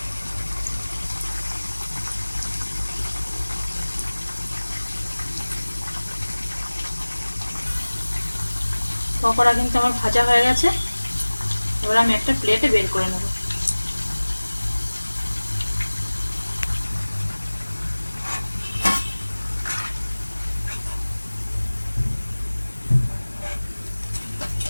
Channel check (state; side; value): inverted; both; correlation -1.00